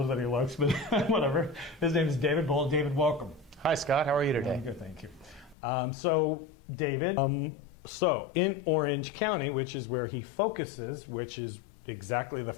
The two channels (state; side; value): drops out; right; at 5.6 s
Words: than he looks, but whatever. His name is David Bull. David, welcome. Hi, Scott. How are you today? I'm good, thank you. So, David, so in Orange County, which is where he focuses, which is exactly the